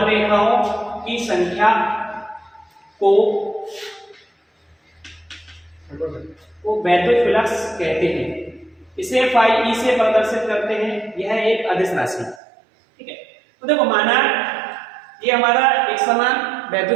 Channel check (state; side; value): drops out; left; at 12.4 s